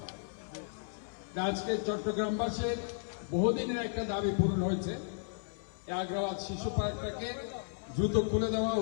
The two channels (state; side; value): silent; right; 55 dB below the other